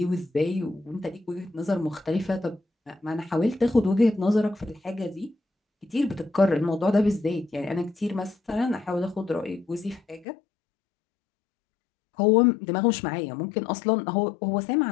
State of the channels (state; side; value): drops out; right; at 10.2 s